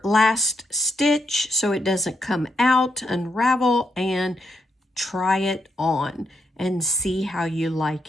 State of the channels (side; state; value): both; normal; correlation 0.80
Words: last stitch so it doesn't come out, unravel, and try it on and see how you